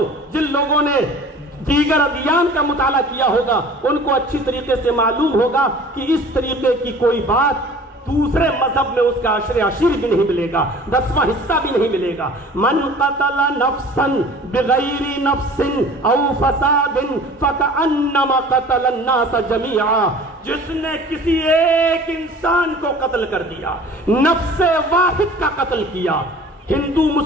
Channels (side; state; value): both; normal; correlation 0.45